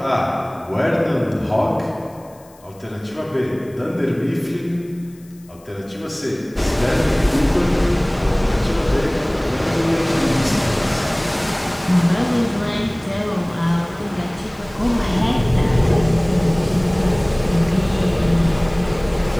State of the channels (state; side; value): noise; left; hiss, 28 dB below the sound